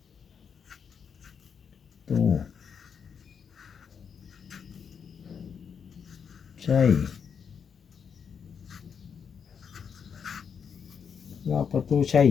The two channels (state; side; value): quieter; right; 6.8 dB